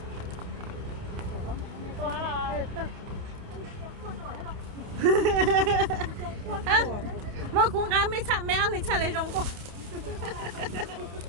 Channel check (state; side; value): late; left; 28 ms